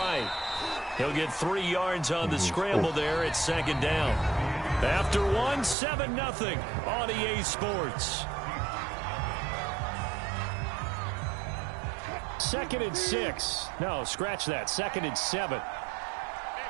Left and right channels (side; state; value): left; drops out; at 5.8 s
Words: He'll get 3 yards on the scramble there at 2nd down. After 1, 7-0 on EA Sports. 2nd and 6. No, scratch that. 2nd and 7.